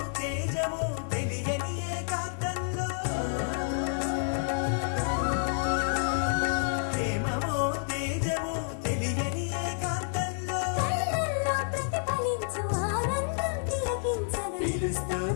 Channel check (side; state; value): right; silent; digital silence